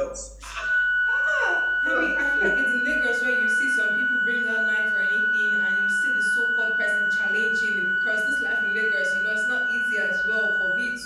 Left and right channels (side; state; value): both; identical; correlation 1.00